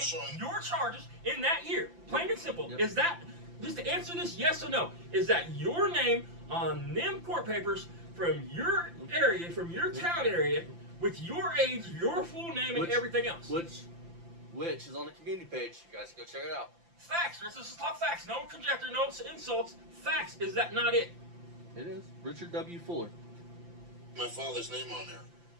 name, showing- your charges in that year. Plain and simple. Yep. Is that, just to answer this yes or no, is that your name on them court papers from your area, from your town area, with your age, your full name, and Which- everything else? Which is on the community page. You guys can go check it out. Facts. Let's just talk facts. No conjecture, no insults. Facts. Is that not it? It is Richard W. Fuller. my father's name on there.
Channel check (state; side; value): late; left; 5.8 ms